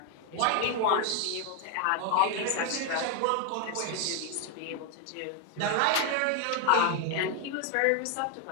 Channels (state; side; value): different; both; correlation 0.01